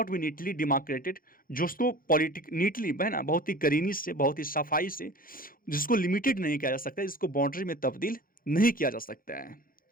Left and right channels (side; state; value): right; late; 0.41 ms